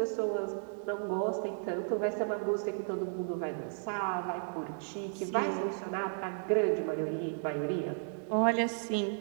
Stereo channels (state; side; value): silent; left; digital silence